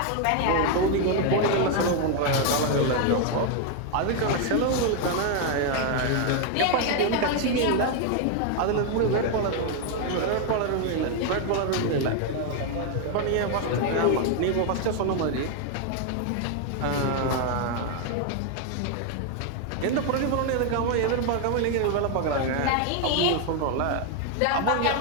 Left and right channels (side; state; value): both; different; correlation 0.01